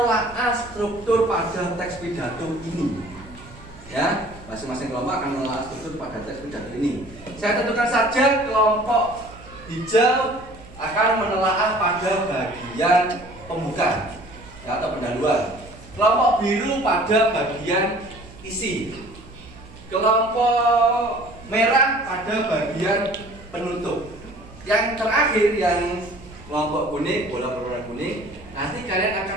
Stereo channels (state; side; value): noise; right; hum, 20 dB below the sound